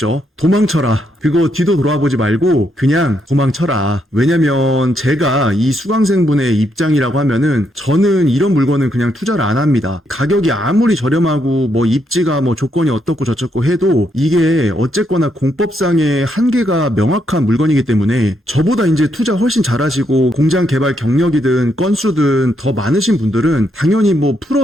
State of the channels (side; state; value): both; normal; correlation 0.77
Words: 도망쳐라. 그거 뒤도 돌아보지 말고 그냥 도망쳐라. 왜냐면 제가 이 수강생분의 입장이라고 하면은 저는 이런 물건은 그냥 투자를 안 합니다. 가격이 아무리 저렴하고 입지가 조건이 어떻고 저쩌고 해도 이게 어쨌거나 공법상의 한계가 명확한 물건이기 때문에 저보다 이제 투자 훨씬 잘하시고 공장 개발 경력이든 건수든 더 많으신 분들은 당연히